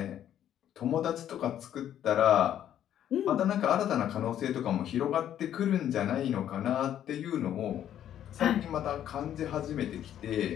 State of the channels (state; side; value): quieter; right; 10.7 dB